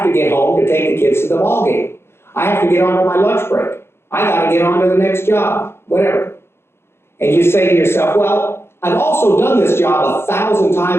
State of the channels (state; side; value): late; right; 0.12 ms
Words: to get home to take the kids to the ball game. I have to get onto my lunch break. I got to get on to the next job, whatever. And you say to yourself, well, I've also done this job 1,000